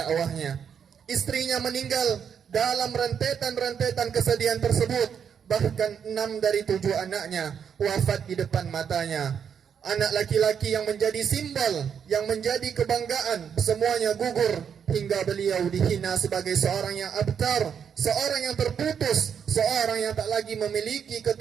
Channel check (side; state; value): left; quieter; 7.6 dB